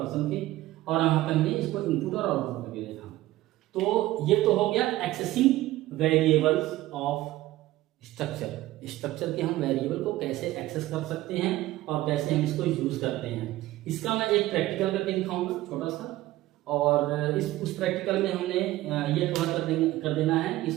के, और यहाँ पे हमने इसको इनपुट और आउटपुट करके देखा। तो ये तो हो गया एक्सेसिंग वेरिएबल्स ऑफ स्ट्रक्चर के हम वेरिएबल को कैसे एक्सेस कर सकते हैं और कैसे हम इसको यूज करते हैं। इसका मैं एक प्रैक्टिकल करके दिखाऊंगा छोटा सा, और उस प्रैक्टिकल में हमने ये कवर कर देना है कि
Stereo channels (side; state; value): left; quieter; 16.5 dB